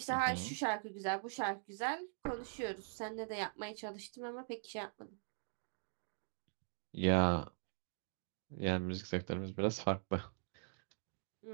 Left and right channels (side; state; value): left; silent; digital silence